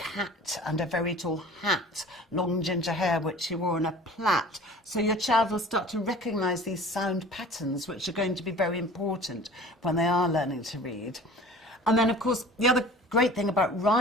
and a very tall hat, long ginger hair which she wore in a plait. So your child will start to recognise these sound patterns, which are going to be very important when they are learning to read. And then, of course, the other great thing about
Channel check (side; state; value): both; normal; correlation 0.43